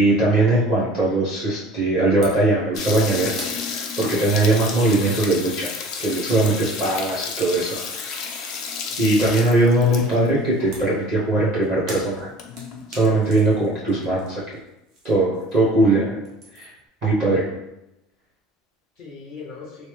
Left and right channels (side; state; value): both; normal; correlation 0.47